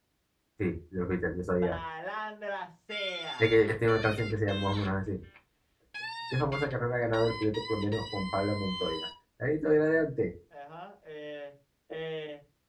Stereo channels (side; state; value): both; identical; correlation 1.00